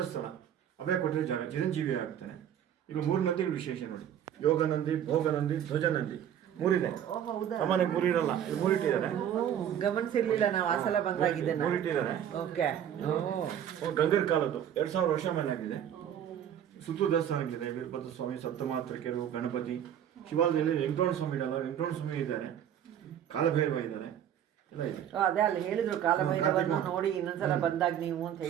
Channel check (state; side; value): quieter; left; 9.8 dB